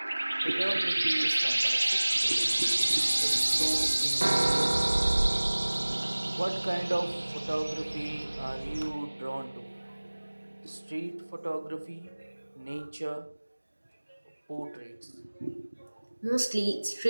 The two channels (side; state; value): both; inverted; correlation -1.00